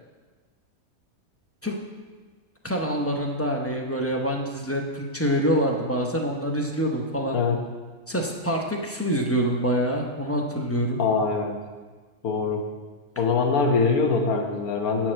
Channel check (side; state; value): both; normal; correlation -0.06